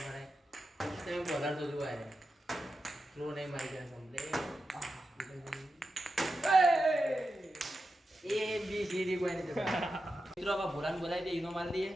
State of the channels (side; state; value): both; normal; correlation 0.90